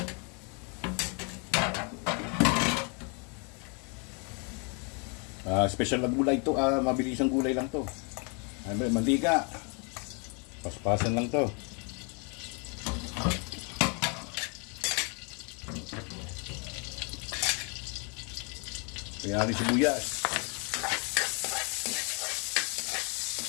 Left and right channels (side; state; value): right; quieter; 35.7 dB